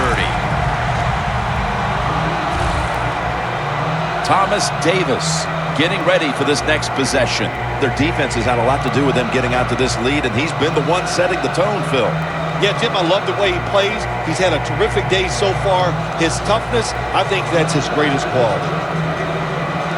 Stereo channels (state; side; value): identical; both; correlation 1.00